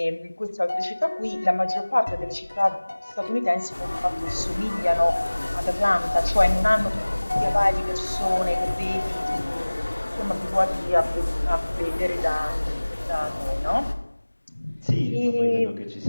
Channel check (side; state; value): both; inverted; correlation -1.00